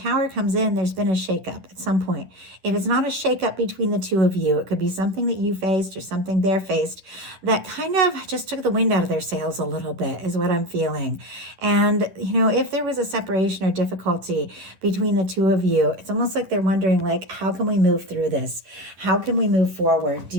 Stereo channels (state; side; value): late; left; 10 ms